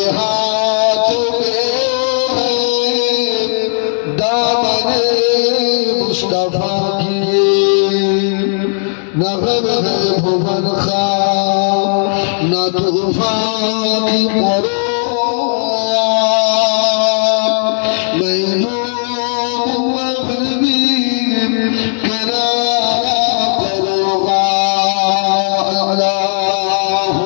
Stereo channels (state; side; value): silent; right; digital silence